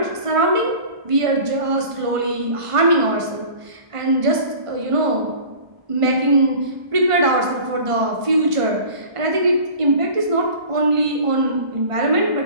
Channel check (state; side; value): late; left; 1.5 ms